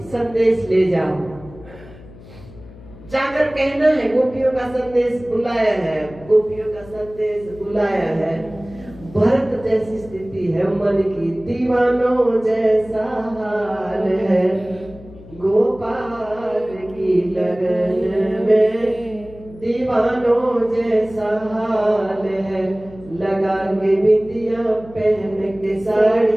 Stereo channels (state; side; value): noise; left; hum, 19 dB below the sound